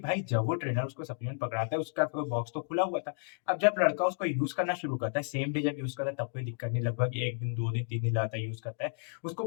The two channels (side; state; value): right; silent; 56 dB below the other